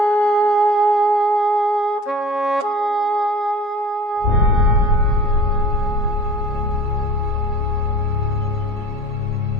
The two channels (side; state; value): right; late; 7.3 ms